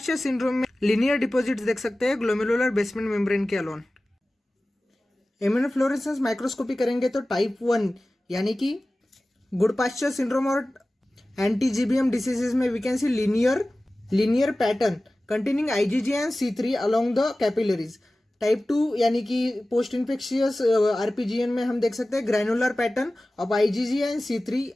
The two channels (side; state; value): both; normal; correlation 0.97